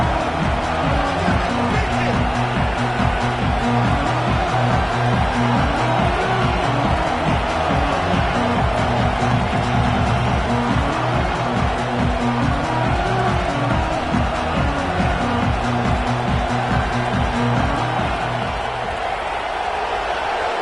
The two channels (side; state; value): both; identical; correlation 1.00